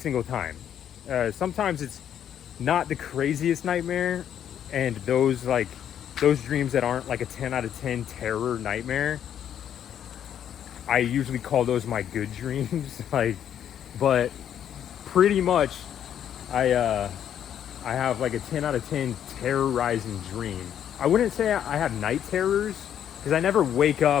time. Sometimes it's not the craziest nightmare, and those dreams that aren't like a 10 out of 10 terror nightmare, I usually call those my good dreams. But pretty much I have like a 10 out of 10 terrorizing dream. I wouldn't say I have night terrors because I never wake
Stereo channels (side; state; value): right; quieter; 9.7 dB